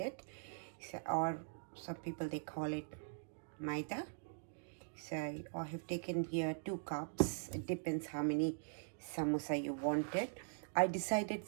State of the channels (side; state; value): left; silent; digital silence